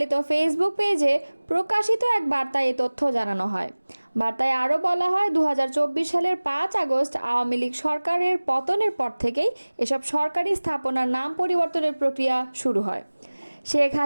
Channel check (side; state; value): both; inverted; correlation -1.00